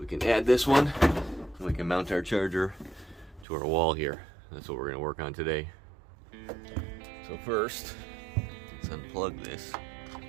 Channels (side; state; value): left; drops out; at 3.5 s